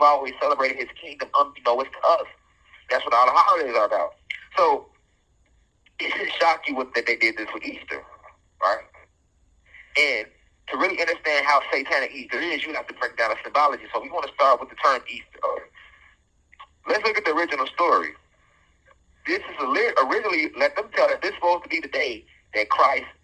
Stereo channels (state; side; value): identical; both; correlation 1.00